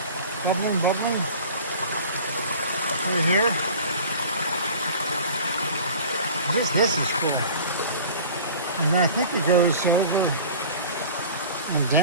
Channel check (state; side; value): inverted; both; correlation -0.42